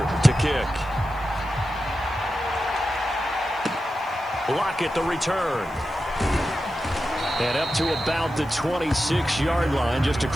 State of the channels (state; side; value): noise; right; hiss, 27 dB below the sound